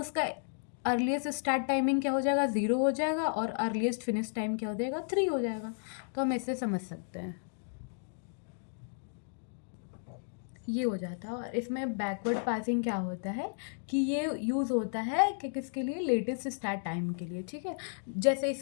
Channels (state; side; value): silent; right; digital silence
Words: अर्लीस्ट स्टार्ट टाइमिंग क्या हो जाएगा, 0 हो जाएगा, और अर्लीस्ट फिनिश टाइम क्या हो जाएगा, 3 हो जाएगा। तो हम इससे समझ सकते हैं, ये हो जाता है। और इसमें बैकवर्ड पासिंग क्या होता है कि ये यूज़ होता है कि किसके लिए, लेटेस्ट स्टार्ट टाइम के लिए, ठीक है। जैसे